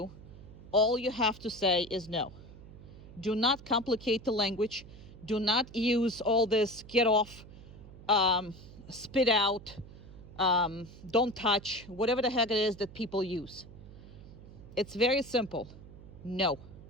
all you have to say is no. Do not complicate the language. Do not use all this get off, spit out, don't touch, whatever the heck it is that people use. It's very simple. No.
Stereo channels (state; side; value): noise; right; hum, 17 dB below the sound